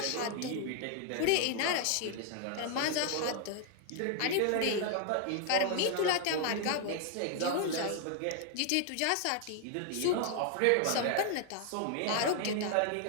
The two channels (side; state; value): both; different; correlation 0.00